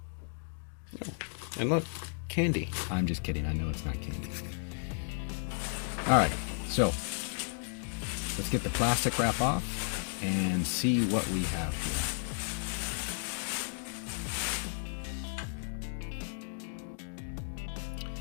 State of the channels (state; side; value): silent; right; 55 dB below the other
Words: and look, candy. I'm just kidding. I know it's not candy. All right, so let's get the plastic wrap off and see what we have here.